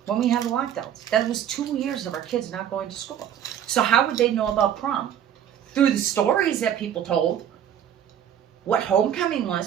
when we had the lockdowns. That was 2 years of our kids not going to school. So how would they know about prom? Through the stories that people told. What homecoming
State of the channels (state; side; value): quieter; left; 9.8 dB